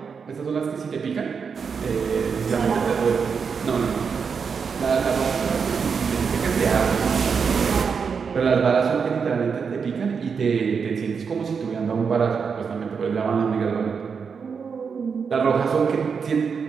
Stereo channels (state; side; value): quieter; left; 6.0 dB